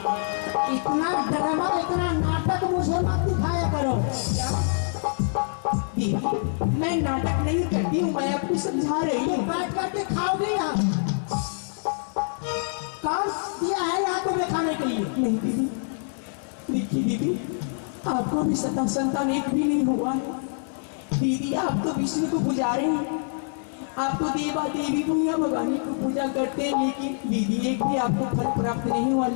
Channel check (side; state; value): right; silent; 59 dB below the other